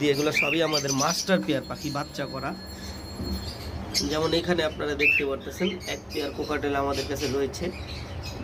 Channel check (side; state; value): both; identical; correlation 1.00